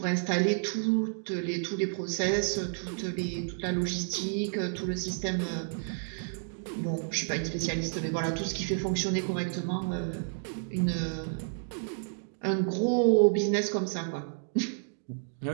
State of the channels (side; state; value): left; silent; digital silence